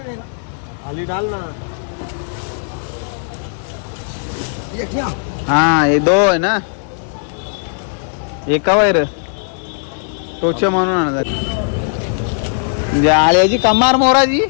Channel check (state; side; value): silent; right; digital silence